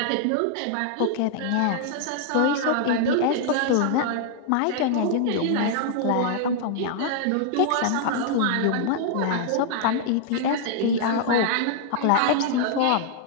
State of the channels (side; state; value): both; different; correlation -0.01